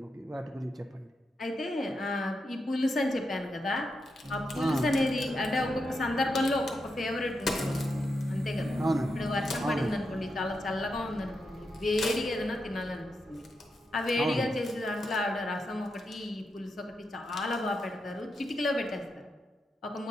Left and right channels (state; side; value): normal; both; correlation 0.85